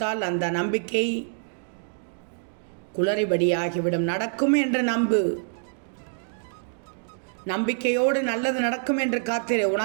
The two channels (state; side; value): silent; left; digital silence